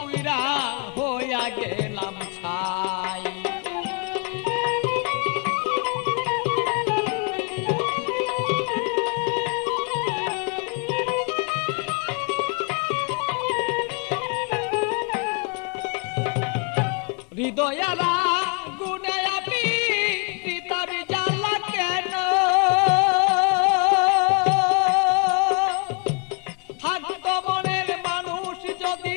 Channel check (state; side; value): quieter; right; 33.2 dB